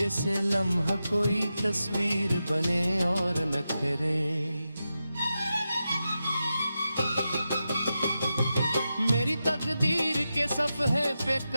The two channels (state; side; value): inverted; both; correlation -0.90